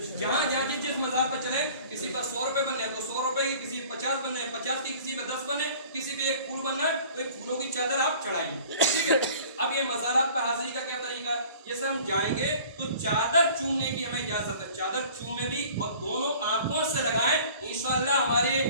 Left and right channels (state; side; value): inverted; both; correlation -0.48